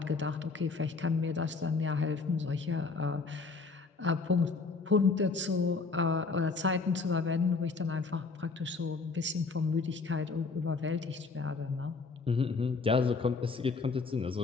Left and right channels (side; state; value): right; quieter; 4.3 dB